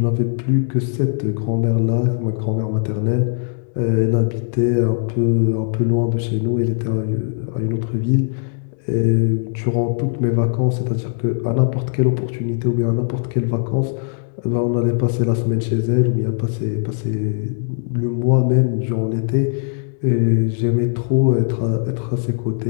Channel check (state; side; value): silent; right; digital silence